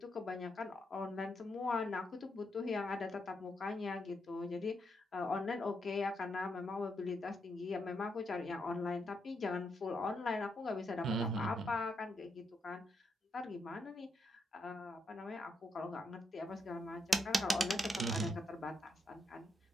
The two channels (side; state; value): both; normal; correlation 0.80